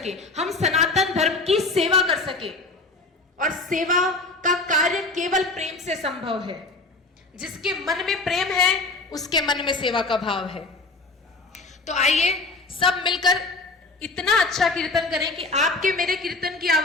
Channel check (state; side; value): quieter; right; 3.4 dB